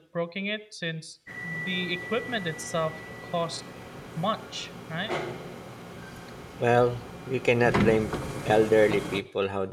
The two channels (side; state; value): both; identical; correlation 1.00